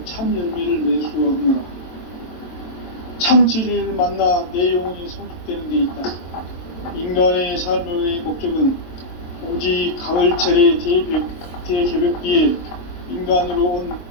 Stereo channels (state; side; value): late; right; 22 ms